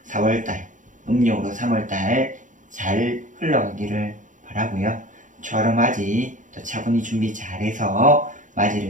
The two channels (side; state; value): left; late; 0.37 ms